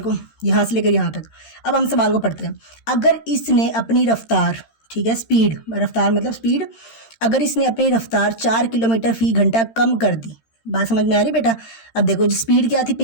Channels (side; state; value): right; late; 13 ms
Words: यहाँ से लेकर यहाँ तक, अब हम सवाल को पढ़ते हैं। अगर इसने अपनी रफ्तार, ठीक है, स्पीड, रफ्तार मतलब स्पीड, अगर इसने अपनी रफ्तार 4 किलोमीटर फी घंटा कम कर दी, बात समझ में आ रही बेटा। अब देखो जो स्पीड क्या थी